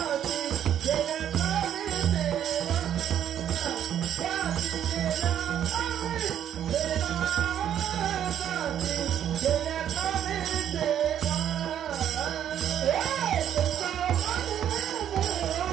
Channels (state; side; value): quieter; left; 10.0 dB